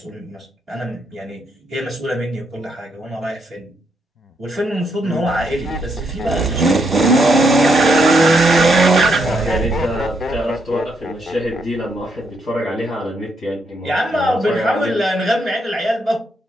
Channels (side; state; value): both; normal; correlation 0.77